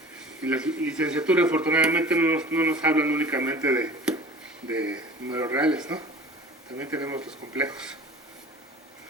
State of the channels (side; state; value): both; normal; correlation 0.43